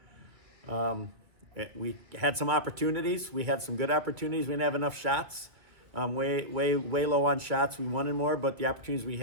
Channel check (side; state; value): left; late; 1.9 ms